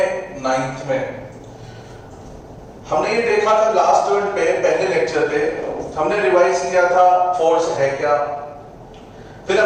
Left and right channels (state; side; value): identical; both; correlation 1.00